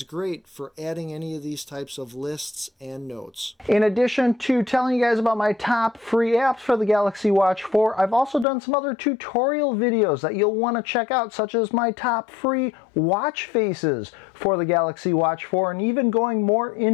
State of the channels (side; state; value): right; drops out; at 8.5 s